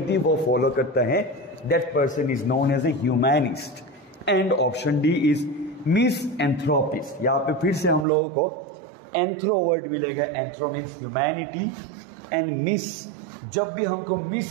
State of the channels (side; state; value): left; drops out; at 8.1 s